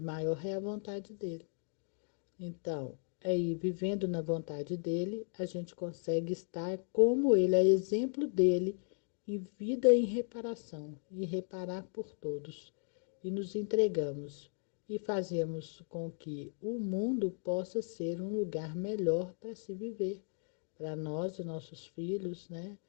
é a vontade dele. Então, aí, vivendo na vontade dele, a gente consegue estar como ele, é exemplo dele, em vida e em reparação, e reparar por todos. E nos entregamos e fazemos com que o mundo possa ser um lugar melhor para se viver, para nós e nossos filhos, né?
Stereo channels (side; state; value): right; silent; 54 dB below the other